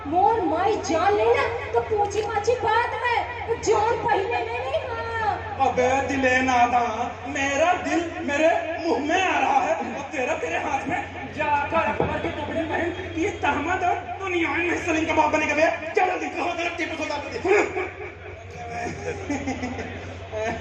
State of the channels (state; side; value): identical; both; correlation 1.00